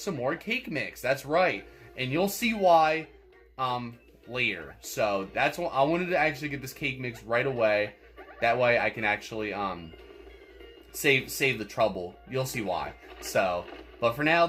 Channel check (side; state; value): both; identical; correlation 1.00